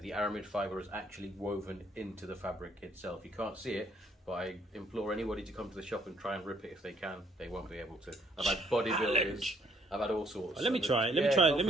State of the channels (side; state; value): both; normal; correlation 0.67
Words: aramid fibre is actually woven into the fabric itself. You can't see it, but I implore anybody to come to the shop and try and rip it if they can. They won't be able to. I've had bodybuilders. I've had all sorts. Let me try it. Let me try